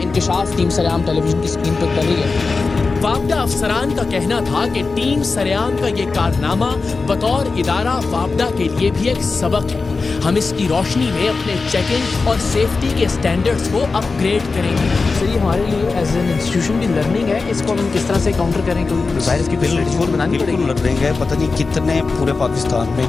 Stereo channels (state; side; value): quieter; right; 4.2 dB